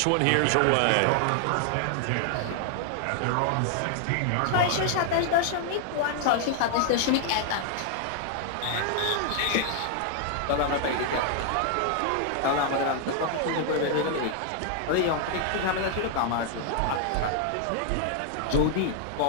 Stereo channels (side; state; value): both; different; correlation 0.00